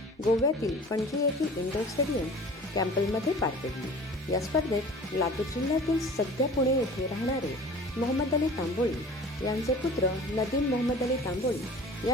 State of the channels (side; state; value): both; normal; correlation 0.42